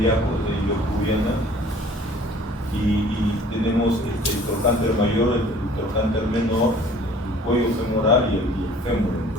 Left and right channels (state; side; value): normal; both; correlation 0.51